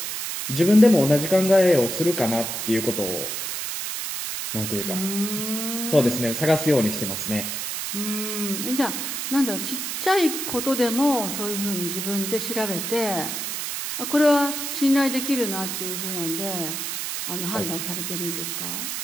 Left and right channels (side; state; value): right; noise; hiss, 4 dB below the sound